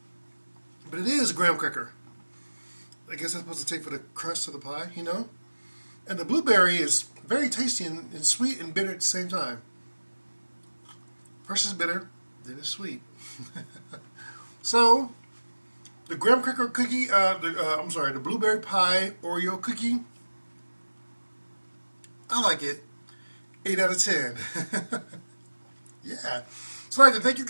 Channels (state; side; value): inverted; both; correlation -1.00